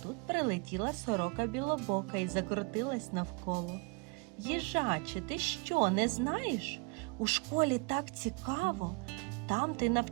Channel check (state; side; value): quieter; left; 31.8 dB